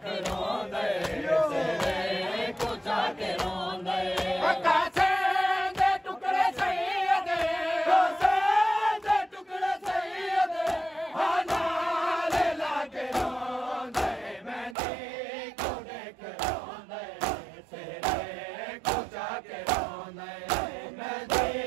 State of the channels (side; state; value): left; drops out; at 14.8 s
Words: के रोंदे सिरे कुचा के रोंदे कासे दे टुकड़े सैयद कासे दे टुकड़े सैयद हानारे लागे रोंदे मेहंदी कुड़े के रोंदे सिरे कुचा के रोंदे